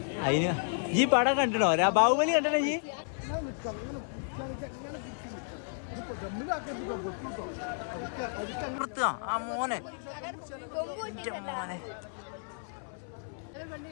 അതിന് ഈ പടം കണ്ടിടോ? ബാഹുബലി കണ്ടിട്ടോ ഈ? ആ മോനെ, മോനെ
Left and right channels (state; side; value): silent; right; 56 dB below the other